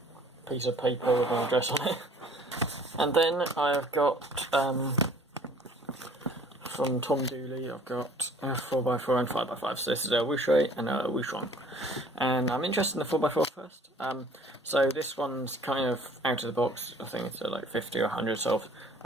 Piece of paper with my address on it. And then I've got, from Tom Dooley, I've got a 4x4 and 5x5. So this is a Wuque and a Wushuang. And I'm interested in the 4x4 first. So this one's kind of out of the box. I think it's like 50 or 100 sold.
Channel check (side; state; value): both; normal; correlation 0.53